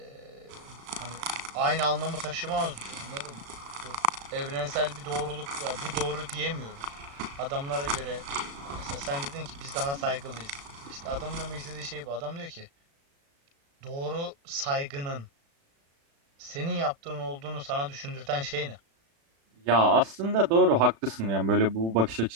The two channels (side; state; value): left; late; 36 ms